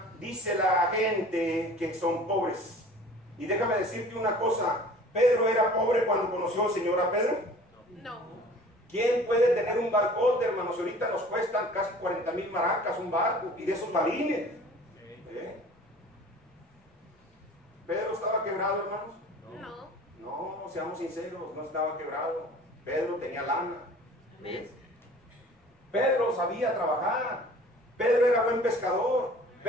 dice la gente que son pobres. Y déjame decirte una cosa, ¿Pedro era pobre cuando conoció al Señor a Pedro? No. ¿Quién puede tener un barcote, hermanos? Ahorita nos cuestan casi 40,000 maracas un barco, y de esos balines. ¿Pedro estaba quebrado, hermanos? No, seamos sinceros, no estaba quebrado. Pedro tenía lana. Amén. Pedro sabía trabajar. Pedro era buen pescador.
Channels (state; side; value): normal; both; correlation 0.46